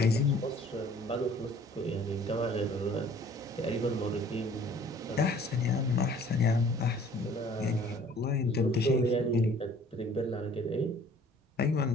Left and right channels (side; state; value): both; normal; correlation 0.53